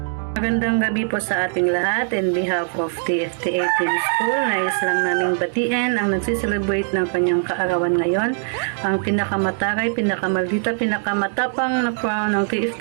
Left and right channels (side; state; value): left; silent; digital silence